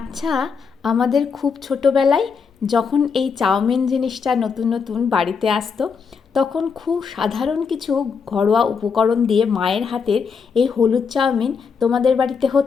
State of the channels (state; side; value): quieter; right; 5.8 dB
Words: আমাদের খুব ছোটোবেলায় যখন এই চাউমিন জিনিসটা নতুন নতুন বাড়িতে আসতো, তখন খুব সাধারণ কিছু ঘরোয়া উপকরণ দিয়ে মায়ের হাতের এই হলুদ চাউমিন তোমাদের বাড়িতে